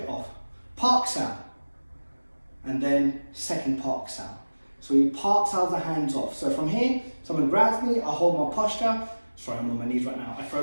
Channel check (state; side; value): inverted; both; correlation -1.00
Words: off. Park sound. And then second park sound. So we park sound the hands off. So from here, someone grabs me, I hold my posture. Sorry, I'm on my knees right now. I